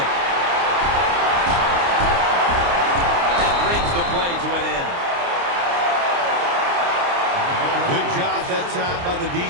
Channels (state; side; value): late; left; 29 ms